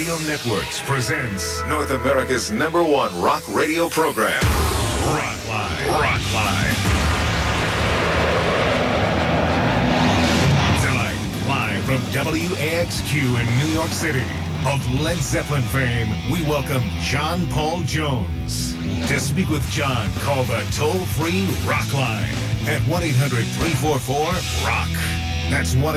Networks presents North America's #1 rock radio program, Rockline. Rockline. Tonight, live from WAXQ in New York City, of Led Zeppelin fame, we welcome John Paul Jones. To speak with John, call the toll-free Rockline at 1-800-344-ROCK. That's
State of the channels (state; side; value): identical; both; correlation 1.00